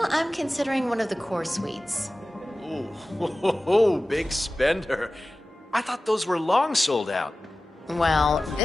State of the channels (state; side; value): normal; both; correlation 0.96